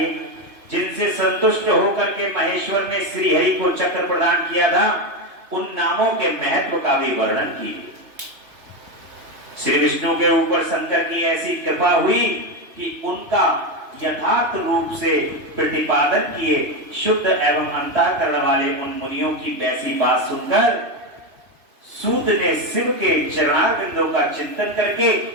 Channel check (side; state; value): left; late; 3.0 ms